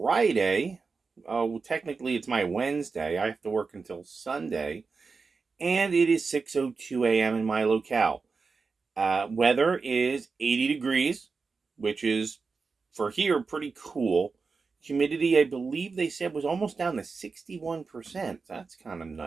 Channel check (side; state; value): left; quieter; 4.6 dB